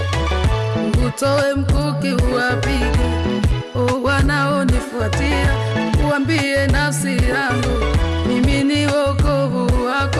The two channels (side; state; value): both; identical; correlation 1.00